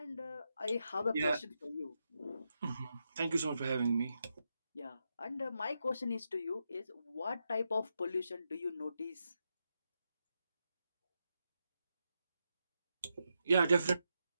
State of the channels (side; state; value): both; inverted; correlation -0.85